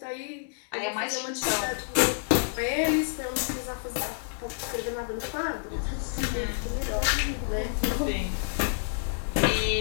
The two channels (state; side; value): silent; right; digital silence